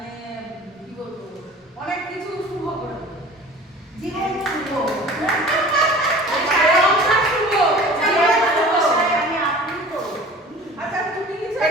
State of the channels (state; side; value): normal; both; correlation 0.43